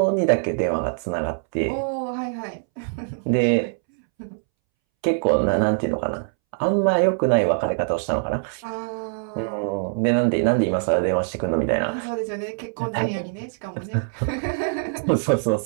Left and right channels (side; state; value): left; silent; 63 dB below the other